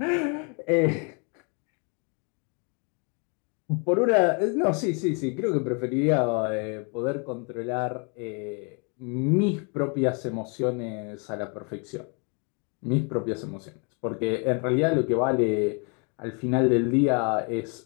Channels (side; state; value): right; quieter; 35.7 dB